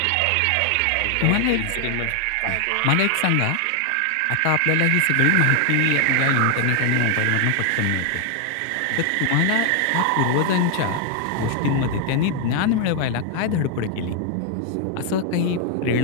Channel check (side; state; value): both; different; correlation 0.00